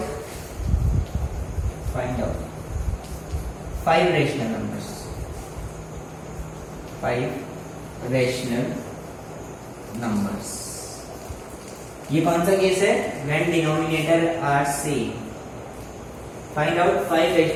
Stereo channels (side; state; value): both; identical; correlation 1.00